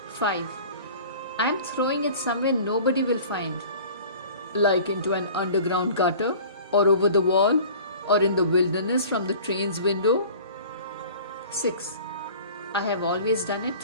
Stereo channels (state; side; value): inverted; both; correlation -0.44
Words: 5. I am throwing it somewhere nobody will find. Like into an underground gutter, or over the wall, or in the wilderness from the train's window. 6. I have always done